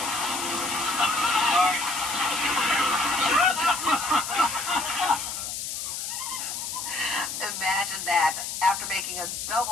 Imagine that. After making a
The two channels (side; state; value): left; noise; hiss, 5 dB below the sound